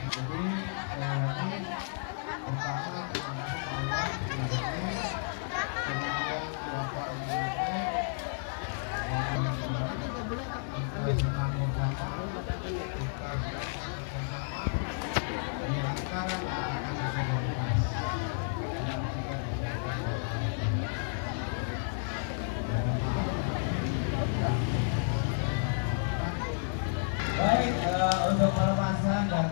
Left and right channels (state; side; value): silent; right; 57 dB below the other